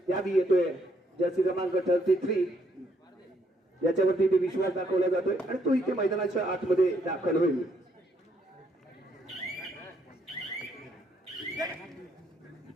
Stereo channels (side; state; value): both; normal; correlation 0.71